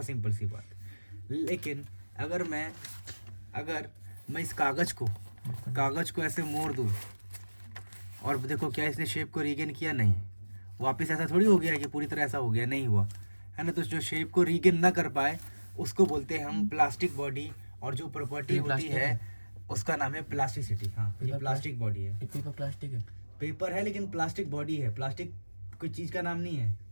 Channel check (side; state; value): both; inverted; correlation -1.00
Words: सिंपल सी बात। लेकिन अगर मैं इस कागज़ को ऐसे मोड़ दूँ और देखो क्या इसने शेप को रीगेन किया, नहीं, वापस ऐसा थोड़ी हो गया कि पूरी तरह ऐसा हो गया, नहीं हुआ, है ना। तो जो शेप को रीगेन ना कर पाए उसको बोलते हैं हम प्लास्टिक बॉडी, और जो प्रॉपर्टी होती है उसका नाम है प्लास्टिसिटी। हाँ, ये प्लास्टिक बॉडी है। पेपर प्लास्टिक है, पेपर है लेकिन प्लास्टिक बॉडी है। प्लास्टिक कोई चीज़ का नाम नहीं है।